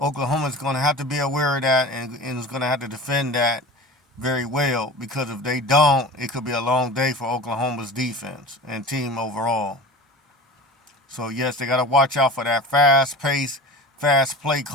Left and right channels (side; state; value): both; normal; correlation 0.35